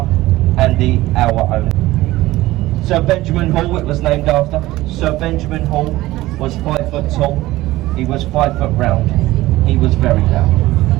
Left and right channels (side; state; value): left; quieter; 17.5 dB